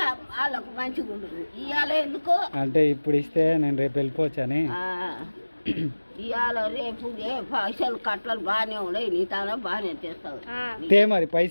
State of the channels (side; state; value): both; inverted; correlation -1.00